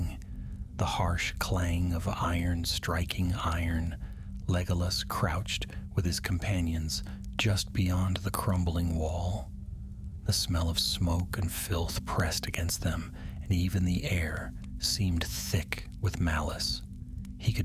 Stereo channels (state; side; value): identical; both; correlation 1.00